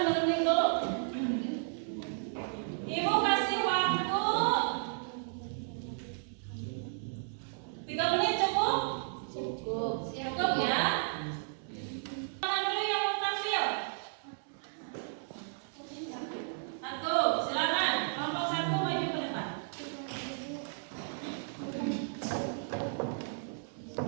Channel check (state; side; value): silent; left; digital silence